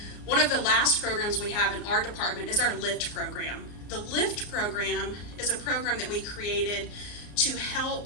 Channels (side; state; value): right; late; 34 ms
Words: One of the last programs we have in our department is our LIFT program. The LIFT program is a program that we created to